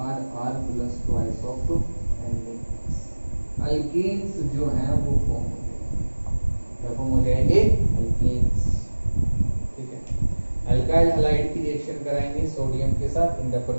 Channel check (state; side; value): inverted; both; correlation -1.00